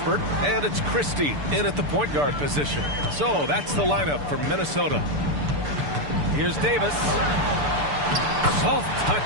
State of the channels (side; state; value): left; late; 6.8 ms